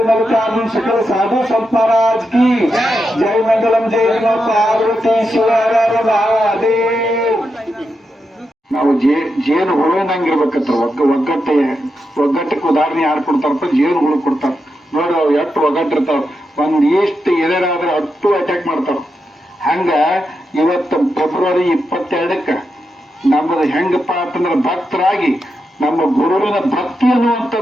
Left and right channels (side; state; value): both; normal; correlation 0.86